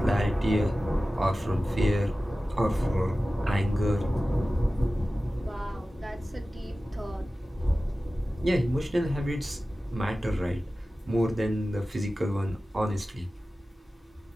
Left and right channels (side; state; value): both; normal; correlation 0.96